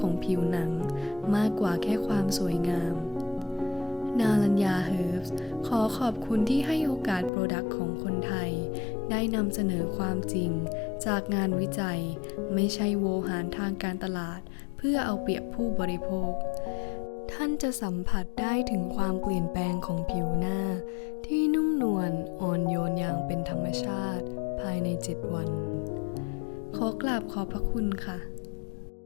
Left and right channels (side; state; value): right; drops out; at 7.3 s